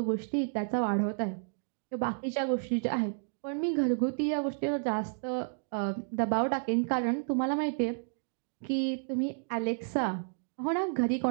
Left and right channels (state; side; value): silent; left; digital silence